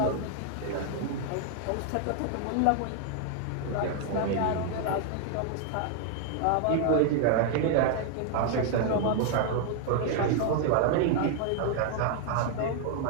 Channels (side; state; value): both; different; correlation 0.00